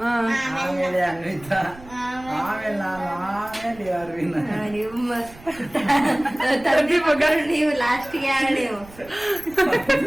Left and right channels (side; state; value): right; noise; rumble, 21 dB below the sound